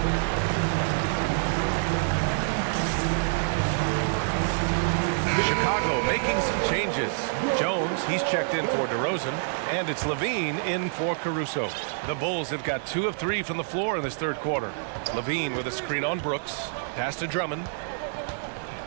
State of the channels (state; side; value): silent; left; digital silence